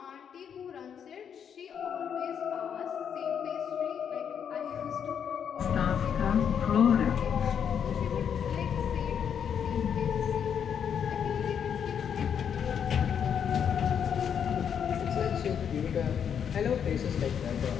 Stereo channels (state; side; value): quieter; right; 7.9 dB